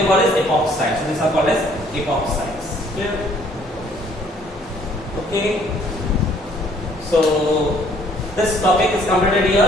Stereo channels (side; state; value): both; normal; correlation 0.61